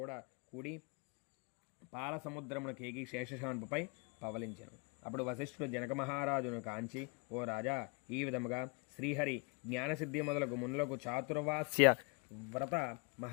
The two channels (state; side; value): quieter; right; 31.6 dB